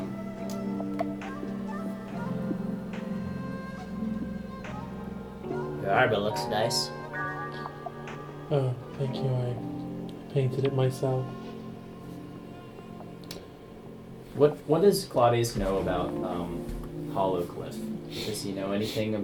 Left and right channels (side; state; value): both; identical; correlation 1.00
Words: Your armor looks nice. Oh, thank you. I painted it myself. what does Claudius know about Hollowcliff? Does he know anything